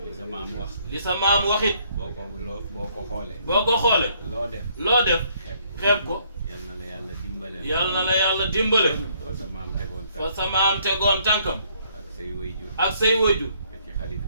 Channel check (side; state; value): both; inverted; correlation -0.67